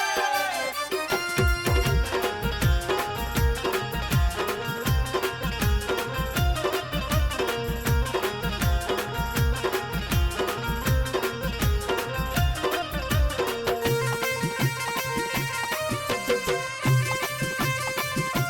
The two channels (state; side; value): identical; both; correlation 1.00